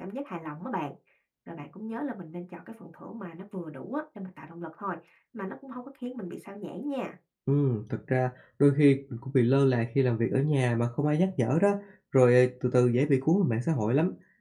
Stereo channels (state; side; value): identical; both; correlation 1.00